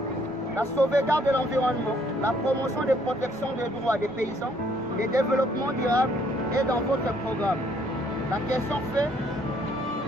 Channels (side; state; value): both; normal; correlation 0.65